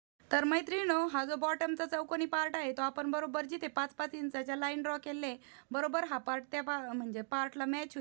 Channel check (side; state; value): left; silent; 52 dB below the other